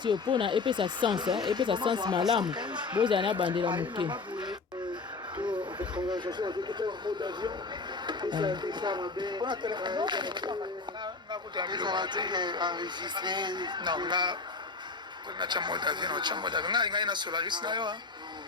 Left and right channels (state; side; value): quieter; right; 4.2 dB